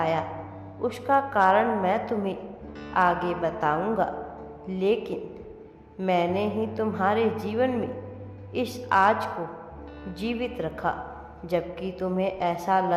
उसका कारण मैं तुम्हें आगे बताऊंगा, लेकिन मैंने ही तुम्हारे जीवन में इस आज को जीवित रखा, जबकि तुम्हें ऐसा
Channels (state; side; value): identical; both; correlation 1.00